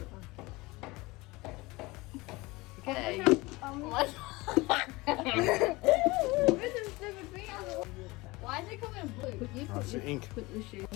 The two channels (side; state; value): right; quieter; 22.3 dB